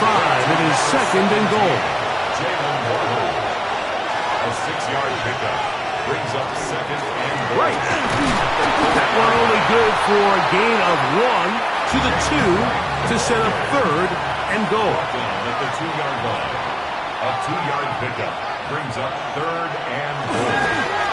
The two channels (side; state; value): both; identical; correlation 1.00